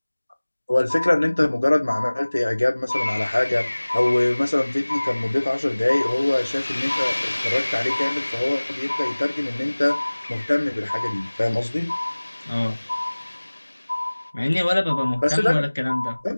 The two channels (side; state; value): both; inverted; correlation -1.00